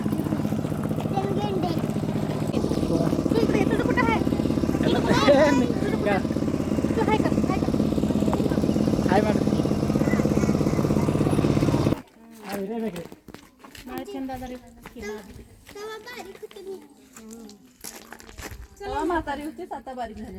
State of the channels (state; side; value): identical; both; correlation 1.00